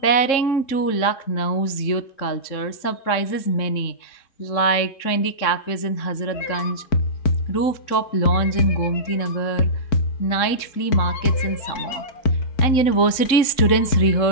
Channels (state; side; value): late; right; 3.7 ms